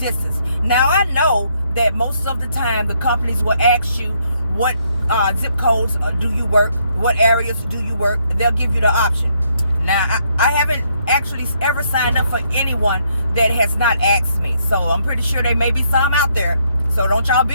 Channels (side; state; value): both; inverted; correlation -0.72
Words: Now, I know that most of the time the companies will ask you what zip codes do you work, what areas do you work. They'll give you the option. Now, I haven't actually ever signed up for anyone that has not asked me. So I'm pretty sure there may be some out there. So don't y'all